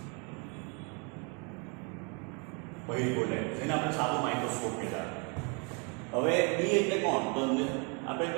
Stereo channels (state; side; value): quieter; left; 34.4 dB